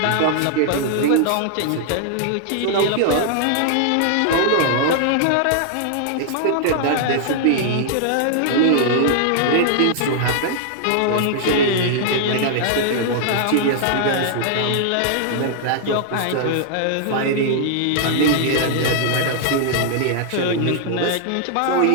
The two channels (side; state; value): both; different; correlation -0.01